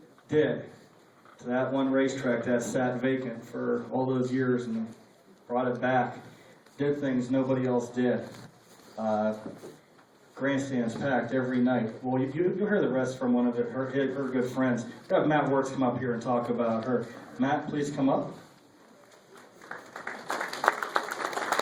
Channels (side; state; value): both; identical; correlation 1.00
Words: did to that one racetrack that sat vacant for all those years and brought it back, did things nobody else did. Grandstands packed every night. Well, you'll hear the rest from one of her good friends. We'll have Matt Wertz come up here and talk about her. Matt, please come up.